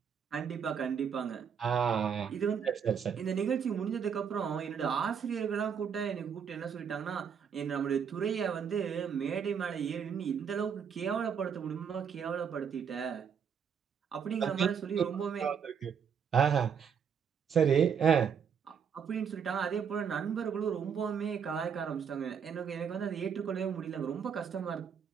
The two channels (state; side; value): quieter; left; 7.2 dB